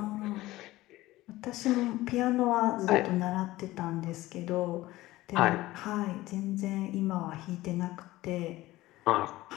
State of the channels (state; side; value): quieter; right; 17.6 dB